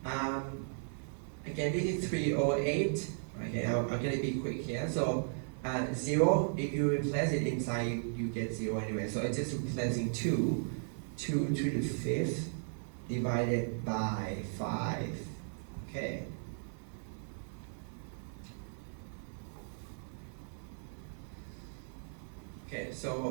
again, this is 3 over 8. Okay, I'm going to be quick here. So 0, if you replace it inside, you get 0 anyway. So it's just replacing 2 to the fifth divided by 5. Okay. Okay,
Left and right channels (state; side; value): silent; left; 54 dB below the other